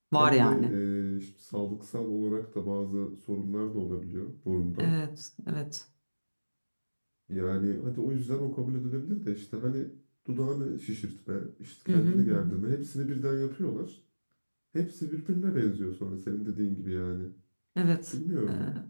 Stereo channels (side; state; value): both; inverted; correlation -1.00